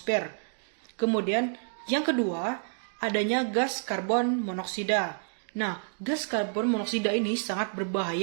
Kemudian yang kedua, adanya gas karbon monoksida. Nah, gas karbon monoksida ini sangat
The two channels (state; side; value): silent; left; 58 dB below the other